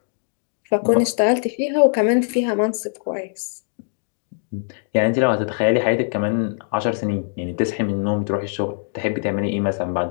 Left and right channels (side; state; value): right; silent; digital silence